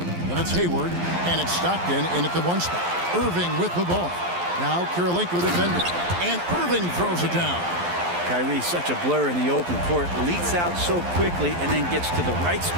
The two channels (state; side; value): late; left; 11 ms